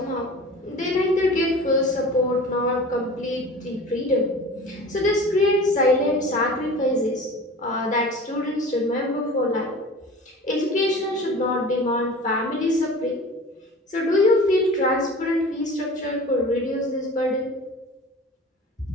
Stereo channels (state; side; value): normal; both; correlation 0.38